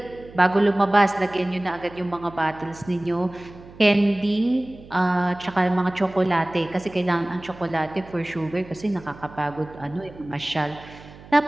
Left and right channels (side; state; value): right; noise; hum, 20 dB below the sound